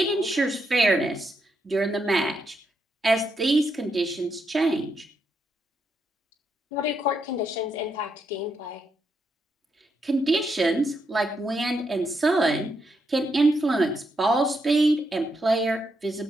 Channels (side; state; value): both; normal; correlation 0.80